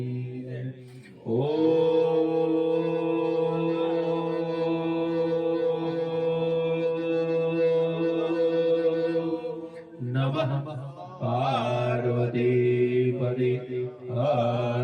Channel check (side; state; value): both; identical; correlation 1.00